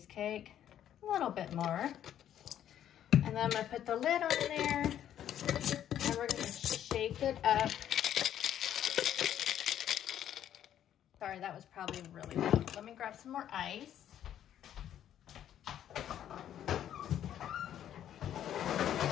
A little bit more. And then I'm gonna put the lid on there and we're gonna shake it up. Sorry, that was probably really loud. Let me grab some more ice.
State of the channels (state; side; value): quieter; right; 10.7 dB